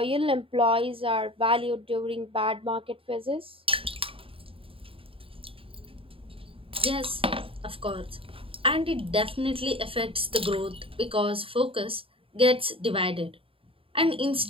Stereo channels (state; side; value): late; left; 0.27 ms